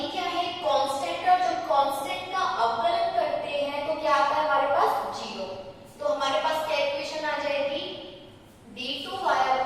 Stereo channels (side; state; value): both; identical; correlation 1.00